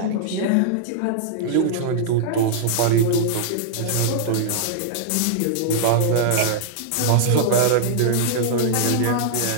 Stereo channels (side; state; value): both; different; correlation -0.01